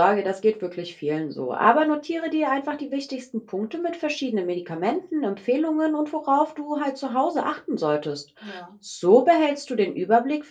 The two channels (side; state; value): both; identical; correlation 1.00